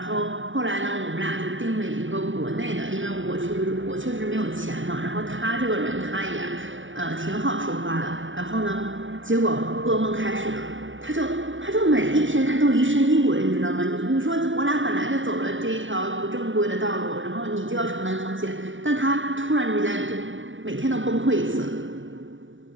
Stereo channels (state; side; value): late; left; 0.56 ms